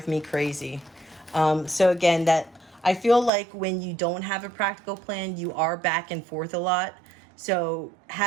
me crazy. So again, that I feel like when you don't have a practical plan, you are back and forth a lot. So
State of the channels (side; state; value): left; drops out; at 3.3 s